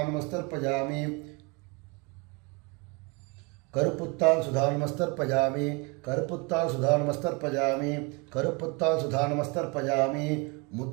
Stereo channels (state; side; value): quieter; left; 29.6 dB